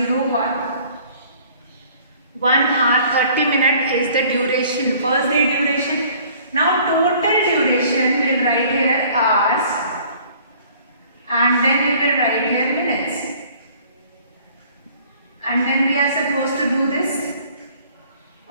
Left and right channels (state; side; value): inverted; both; correlation -0.54